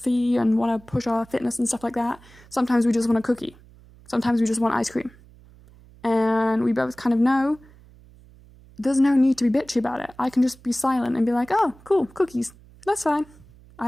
and want to push our fitness and stuff like that. Sometimes we just want a cookie. Sometimes we just want ice cream. And we both kind of know there's no need to be bitchy about it. I can just be silent and be like, oh, cool, cookies. That's fine.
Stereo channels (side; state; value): right; noise; hum, 24 dB below the sound